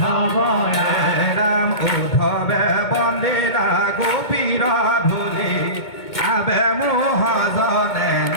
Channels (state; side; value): late; right; 2.2 ms